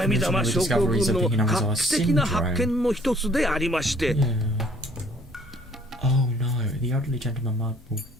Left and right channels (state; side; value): normal; both; correlation 0.59